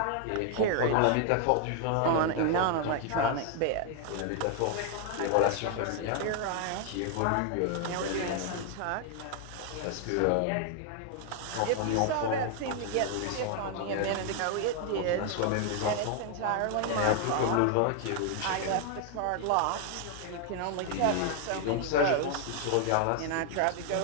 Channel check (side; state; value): both; different; correlation 0.00